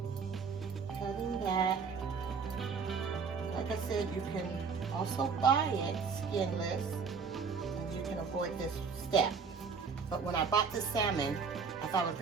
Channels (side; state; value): left; quieter; 5.5 dB